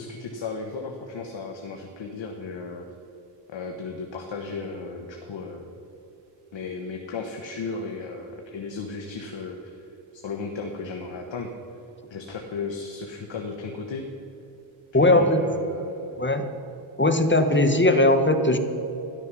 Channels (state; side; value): normal; both; correlation 0.06